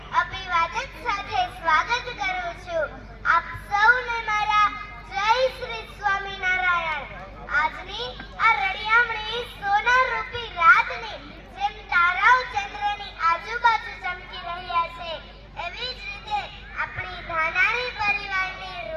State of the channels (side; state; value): both; identical; correlation 1.00